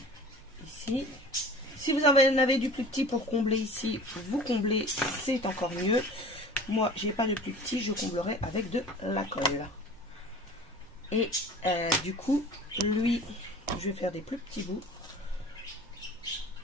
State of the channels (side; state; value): right; noise; hum, 27 dB below the sound